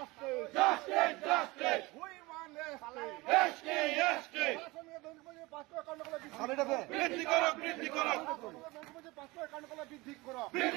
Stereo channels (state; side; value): quieter; left; 22.5 dB